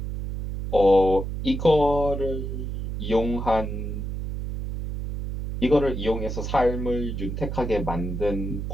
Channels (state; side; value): noise; right; hum, 5 dB below the sound